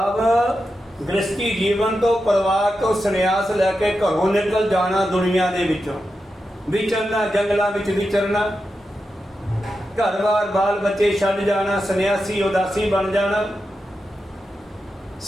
ਗ੍ਰਸਤੀ ਜੀਵਨ ਤੋਂ, ਪਰਿਵਾਰ ਤੋਂ ਸੰਨਿਆਸ ਲੈ ਕੇ ਘਰੋਂ ਨਿਕਲ ਜਾਣਾ, ਦੁਨੀਆ ਦੇ ਵਿੱਚੋਂ ਵਿਚਰਨਾ, ਜੰਗਲਾਂ ਵਿੱਚ ਵਿਚਰਨਾ, ਘਰ-ਬਾਰ ਬਾਲ ਬੱਚੇ ਛੱਡ ਜਾਣਾ, ਸੰਨਿਆਸੀ ਉਦਾਸੀ ਬਣ ਜਾਣਾ,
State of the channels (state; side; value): normal; both; correlation 0.89